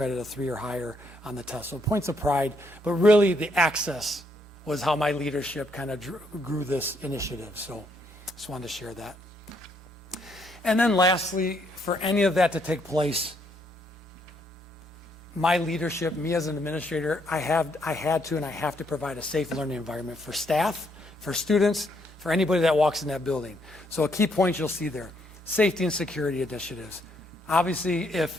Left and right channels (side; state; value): both; normal; correlation 0.73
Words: of 3 or higher on the test. So points of pride, but really the access was how my leadership kind of grew this initiative. So just wanted to share that. And then lastly, for any of that to take place, my leadership, me as an administrator, I had to and I have to provide a safe learning environment for staff, for students, for anybody that walks in that building. So a key point you'll see there, safety and security initiatives. Obviously,